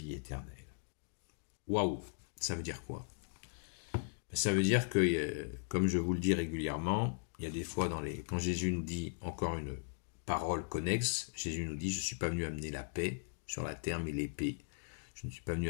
éternelle. Waouh! Ça veut dire quoi? Ça veut dire que, comme je vous le dis régulièrement, il y a des fois quand Jésus nous dit encore une parole connexe, Jésus nous dit, je ne suis pas venu amener la paix sur la terre, mais l'épée. Je ne suis pas venu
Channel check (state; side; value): silent; right; digital silence